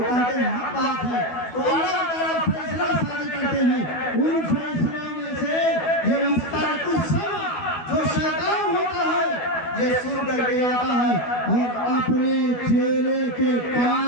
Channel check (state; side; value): late; right; 12 ms